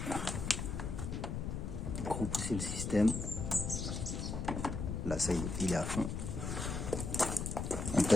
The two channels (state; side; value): noise; left; rumble, 3 dB below the sound